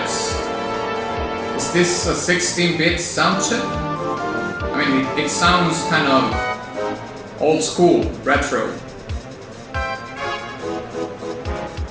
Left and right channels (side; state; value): both; identical; correlation 1.00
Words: Is this a 16-bit sound chip? I mean, it sounds kind of old school, retro.